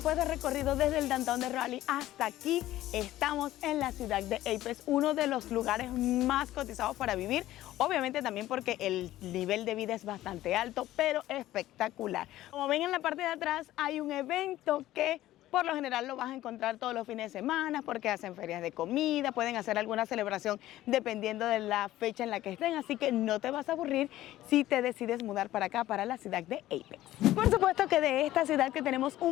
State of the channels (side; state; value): right; quieter; 14.8 dB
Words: del recorrido desde el downtown de Raleigh hasta aquí, estamos en la ciudad de Apex, uno de los lugares más cotizados para vivir, obviamente también porque el nivel de vida es bastante alto, pero espectacular. Como ven en la parte de atrás hay un evento que por lo general lo vas a encontrar todos los fines de semana porque hacen ferias de comida, pueden hacer alguna celebración dependiendo de la fecha en la que estén, así que no te vas a aburrir si te decides mudar para acá, para la ciudad de Apex. Por supuesto que de esta ciudad que tenemos